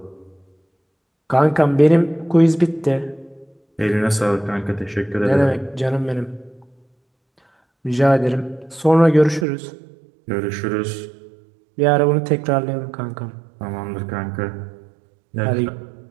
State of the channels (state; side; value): drops out; left; at 9.5 s